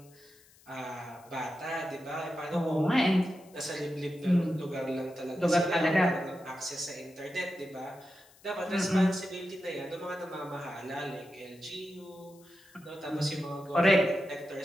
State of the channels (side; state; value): left; noise; hiss, 27 dB below the sound